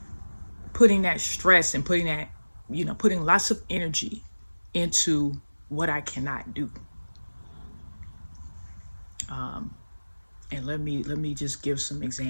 putting that stress and putting lots of energy into what I cannot do. And let me just give some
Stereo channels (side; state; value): both; inverted; correlation -1.00